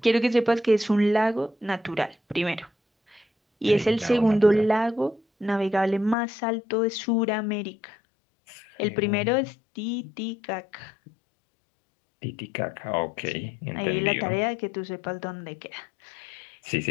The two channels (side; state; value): right; drops out; at 6.2 s